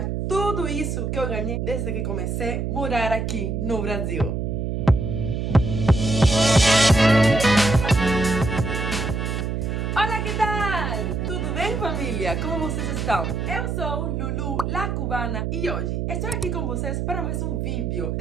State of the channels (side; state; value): right; noise; hum, 1 dB below the sound